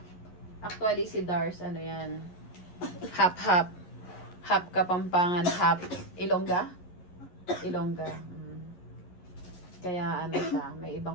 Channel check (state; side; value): late; right; 11 ms